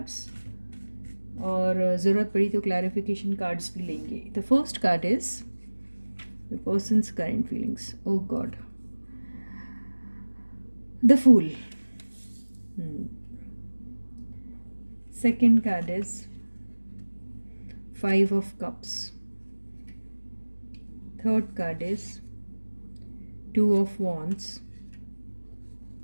और ज़रूरत पड़ी तो क्लैरिफिकेशन कार्ड्स भी लेंगे। The first card is the person's current feelings. Oh God, the fool. Second card is 5 of Cups. Third card is 2 of Wands.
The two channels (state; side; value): inverted; both; correlation -1.00